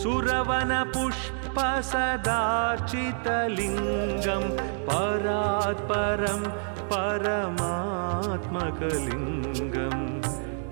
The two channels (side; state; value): left; silent; digital silence